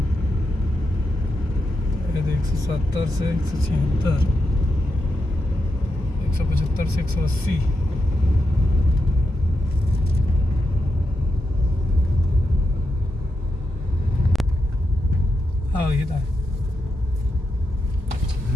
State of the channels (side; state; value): both; normal; correlation 0.86